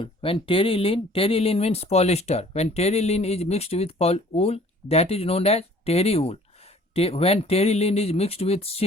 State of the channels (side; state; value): both; normal; correlation 0.53